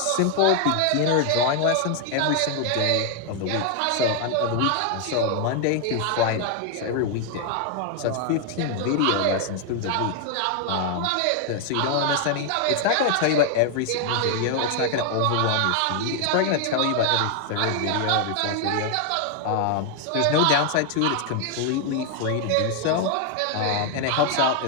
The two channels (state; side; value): different; both; correlation 0.00